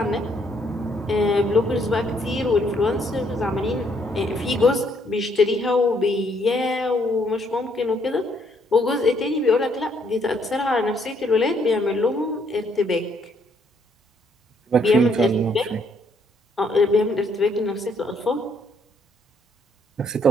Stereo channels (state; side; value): normal; both; correlation 0.69